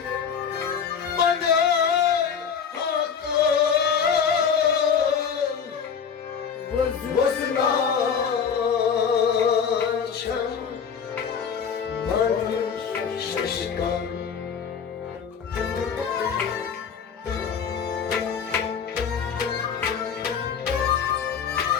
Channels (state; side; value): quieter; right; 6.9 dB